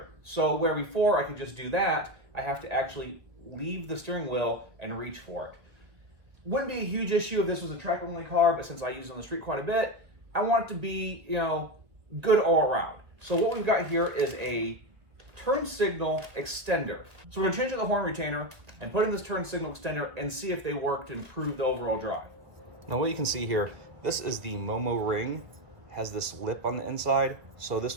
So where before I could just do that, I have to actually leave the steering wheel and reach for it. Wouldn't be a huge issue if this was a track only car, but since I use it on the street quite a bit, I want it to be, good all around. So what we've got here is a turn signal extender. So we're gonna change out the horn retainer and put in this turn signal extender and see if they work to improve the overall drive. Now what you can see here, this is the Momo ring, has this lip on the inside. So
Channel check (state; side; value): late; left; 1.9 ms